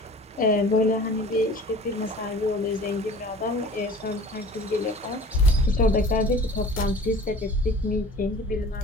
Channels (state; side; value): normal; both; correlation 0.43